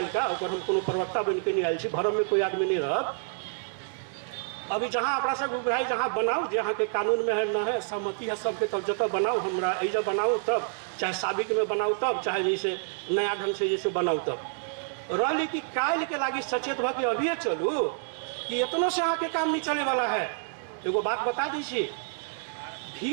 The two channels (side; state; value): left; silent; digital silence